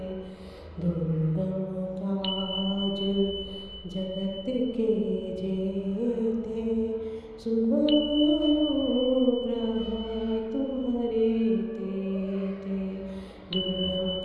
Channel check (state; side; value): identical; both; correlation 1.00